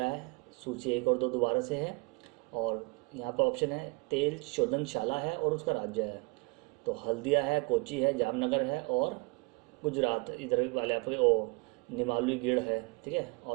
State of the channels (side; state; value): left; quieter; 29.5 dB